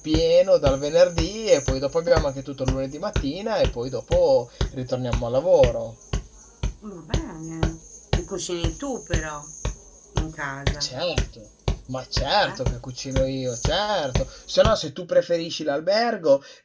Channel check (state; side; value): identical; both; correlation 1.00